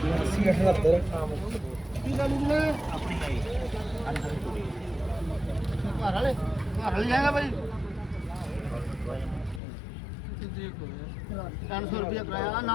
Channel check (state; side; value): drops out; right; at 9.6 s